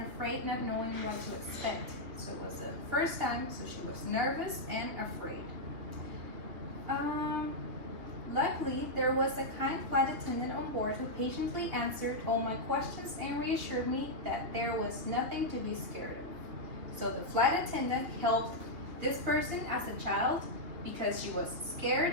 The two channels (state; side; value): late; left; 2.8 ms